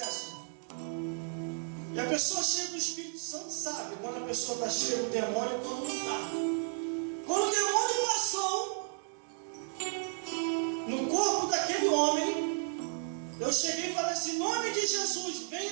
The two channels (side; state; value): left; silent; digital silence